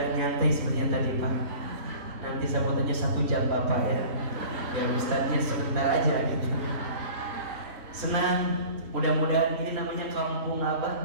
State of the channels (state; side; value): late; left; 3.6 ms